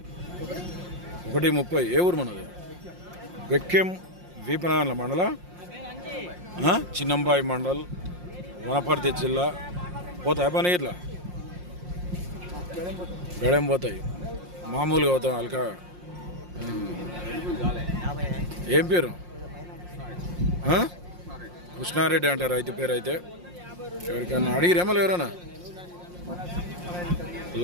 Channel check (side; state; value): left; late; 5.6 ms